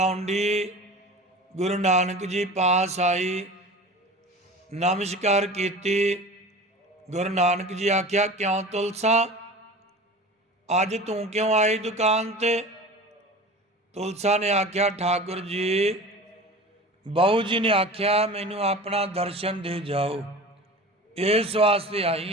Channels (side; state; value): both; normal; correlation 0.36